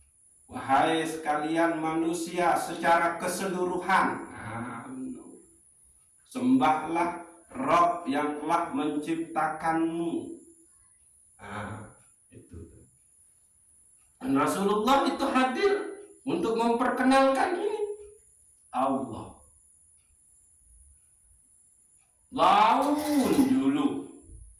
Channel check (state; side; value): identical; both; correlation 1.00